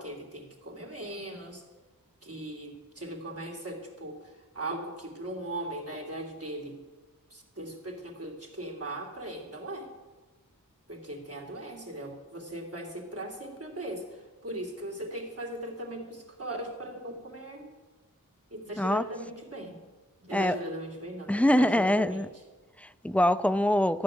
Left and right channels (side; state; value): both; normal; correlation 0.74